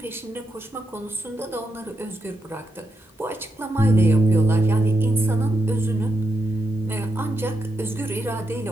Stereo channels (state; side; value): normal; both; correlation 0.83